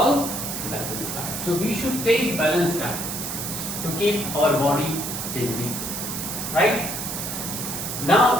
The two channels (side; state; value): right; noise; hiss, 5 dB below the sound